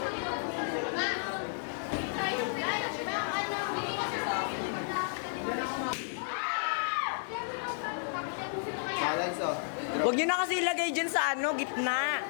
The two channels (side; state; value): right; silent; 56 dB below the other